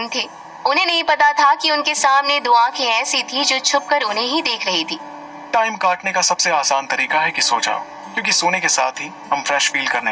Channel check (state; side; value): identical; both; correlation 1.00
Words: थे। उन्हें नहीं पता था कि उनके सामने दो आंखें ऐसी थी जो छुपकर उन्हें ही देख रही थी। टाइम काटने का सबसे आसान तरीका है कि सो जाओ, क्योंकि सोने के साथ ही हम फ्रेश फील करने